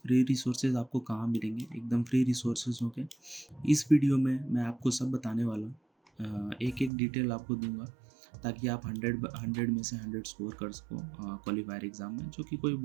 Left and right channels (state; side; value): drops out; left; at 6.9 s